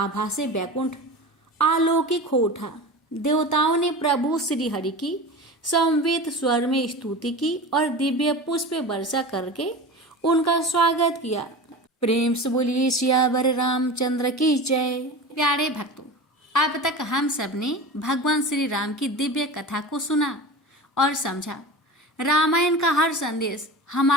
से बैकुंठ आलौकिक हो उठा। देवताओं ने प्रभु श्री हरि की समवेत स्वर में स्तुति की और दिव्य पुष्प वर्षा करके उनका स्वागत किया। प्रेम से बोलिए सियावर रामचंद्र की जय। प्यारे भक्तों, अब तक हम सब ने भगवान श्री राम की दिव्य कथा को सुना और समझा। रामायण का हर संदेश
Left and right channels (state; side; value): normal; both; correlation 0.31